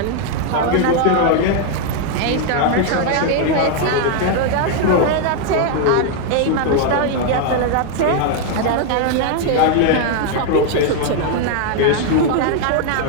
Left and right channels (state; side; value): different; both; correlation 0.00